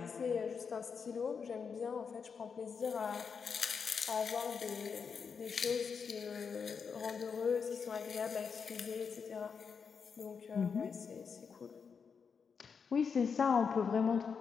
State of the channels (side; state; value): right; quieter; 6.0 dB